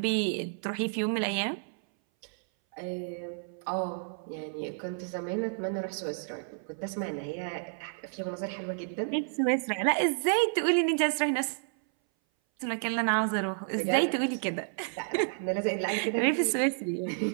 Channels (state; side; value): silent; left; 57 dB below the other